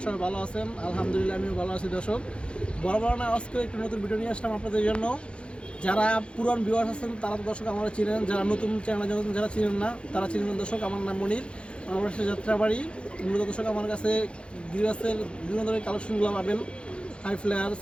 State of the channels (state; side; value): late; right; 0.058 ms